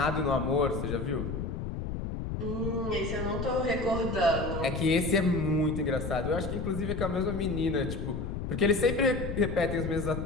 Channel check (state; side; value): noise; left; rumble, 4 dB below the sound